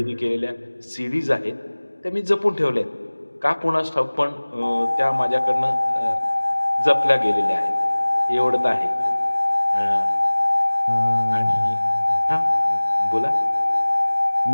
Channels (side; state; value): both; inverted; correlation -1.00